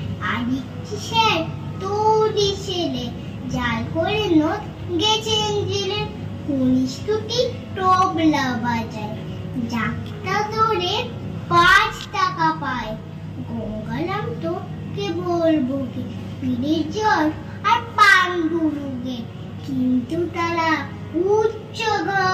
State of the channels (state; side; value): identical; both; correlation 1.00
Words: আরেকটি স্যার তৌরি ছেলে, জাল করে নোট গেছেন জেলে। কনিষ্ঠটি তবলা বাজায়, যাত্রা ধরে 5 টাকা পায়। গঙ্গারাম তো কে বলবো কি, পীরের জ্বর আর পাণ্ডুরোগে। কিন্তু তারা উচ্চ